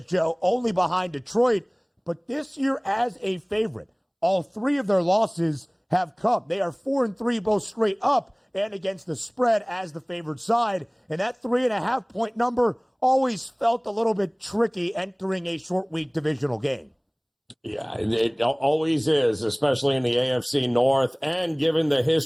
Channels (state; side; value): identical; both; correlation 1.00